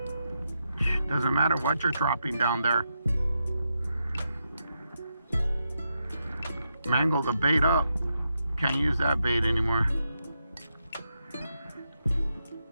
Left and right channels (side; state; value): both; inverted; correlation -0.84